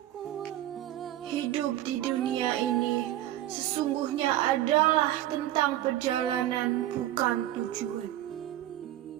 Hidup di dunia ini sesungguhnya adalah tentang perjalanan, bukan tujuan.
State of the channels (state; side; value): quieter; left; 13.8 dB